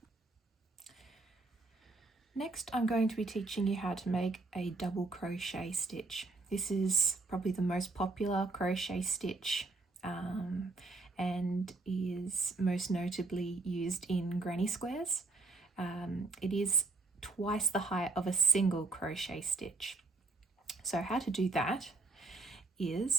Next, I'm going to be teaching you how to make a double crochet stitch. This is probably the most popular crochet stitch and is most notably used in granny squares. It is twice the height of a single crochet stitch. So how to do that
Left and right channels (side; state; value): left; quieter; 3.3 dB